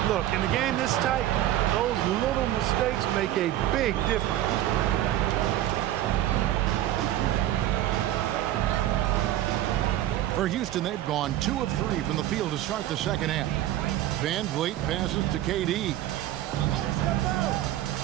Look, in the game this tight, those little mistakes make a big difference. For Houston, they've gone 2 of 3 from the field to start the second half. Van Vliet passes to KD.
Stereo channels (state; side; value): quieter; left; 13.5 dB